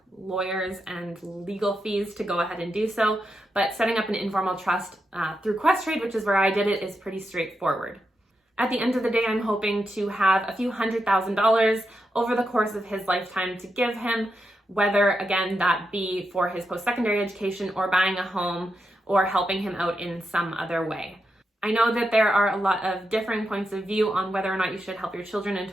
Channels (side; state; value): both; normal; correlation 0.85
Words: lawyers and legal fees to go ahead and do so. But setting up an informal trust through Questrade, which is where I did it, is pretty straightforward. At the end of the day, I'm hoping to have a few $100,000 over the course of his lifetime to give him, whether, again, that be for his post-secondary education or buying a home or helping him out in some other way. I know that there are a lot of differing points of view on whether or not you should help your children and